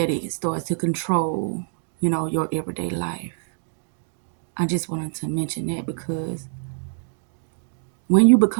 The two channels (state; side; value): silent; left; digital silence